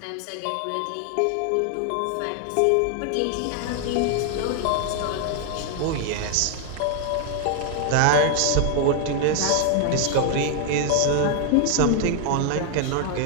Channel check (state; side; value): different; both; correlation 0.00